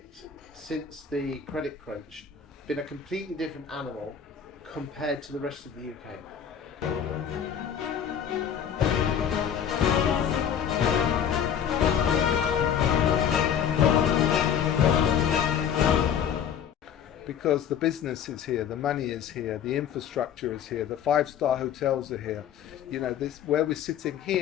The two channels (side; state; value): right; quieter; 8.4 dB